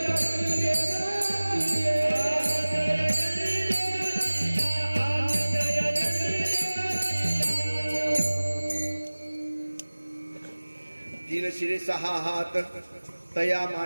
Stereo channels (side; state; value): both; inverted; correlation -1.00